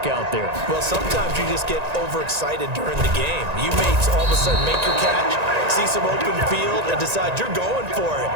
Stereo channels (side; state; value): left; late; 1.9 ms